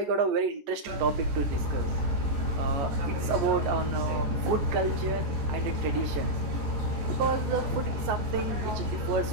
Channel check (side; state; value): left; late; 14 ms